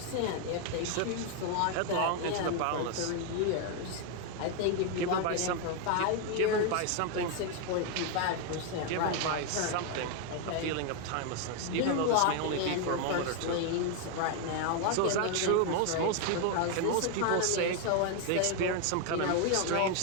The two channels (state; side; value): different; both; correlation 0.01